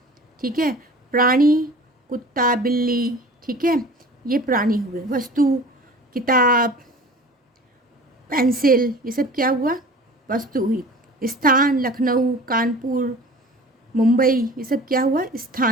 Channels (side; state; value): both; normal; correlation 0.42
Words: ठीक है, प्राणी, कुत्ता, बिल्ली, ठीक है, ये प्राणी हुए। वस्तु, किताब, पेंसिल, ये सब क्या हुआ? वस्तु हुई। स्थान, लखनऊ, कानपुर, मुंबई, ये सब क्या हुआ?